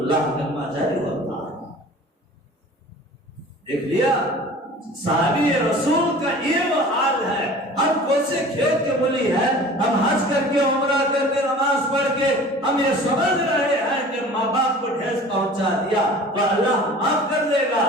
کلمہ جاری ہوتا ہے۔ دیکھ لیا، صحابی رسول کا یہ وہ حال ہے۔ ہم کوسے کھیت کے ملی ہے، ہم حج کر کے، عمرہ کر کے، نماز پڑھ کے ہم یہ سمجھ رہے ہیں کہ ماں باپ کو ٹھیس پہنچا دیا تو اللہ معاف کر دے گا،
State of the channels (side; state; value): both; normal; correlation 0.43